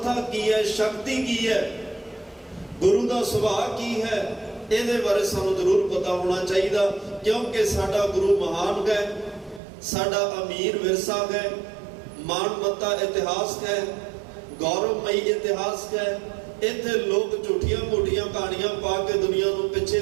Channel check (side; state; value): left; drops out; at 9.6 s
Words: ਕੀ ਹੈ, ਸ਼ਕਤੀ ਕੀ ਹੈ, ਗੁਰੂ ਦਾ ਸੁਭਾਅ ਕੀ ਹੈ, ਇਹਦੇ ਬਾਰੇ ਸਾਨੂੰ ਜ਼ਰੂਰ ਪਤਾ ਹੋਣਾ ਚਾਹੀਦਾ। ਕਿਉਂਕਿ ਸਾਡਾ ਗੁਰੂ ਮਹਾਨ ਹੈ, ਸਾਡਾ ਅਮੀਰ ਵਿਰਸਾ ਹੈ, ਮਾਨਮੱਤਾ ਇਤਿਹਾਸ ਹੈ, ਗੌਰਵਮਈ ਇਤਿਹਾਸ ਹੈ। ਇੱਥੇ ਲੋਕ ਝੂਠੀਆਂ ਮੋਟੀਆਂ ਕਹਾਣੀਆਂ ਪਾ ਕੇ ਦੁਨੀਆ ਨੂੰ ਪਿੱਛੇ